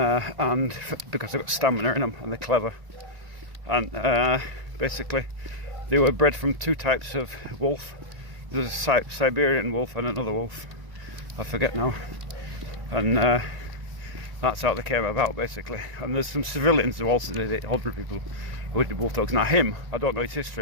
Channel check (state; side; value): late; left; 1.9 ms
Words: because they've got stamina in them and they're clever, and basically they were bred from two types of wolf. There's a Siberian wolf and another wolf, I forget now, and that's how they came about, basically. And there's some civilians who also did it, ordinary people who did wolf dogs. Now him, I don't know his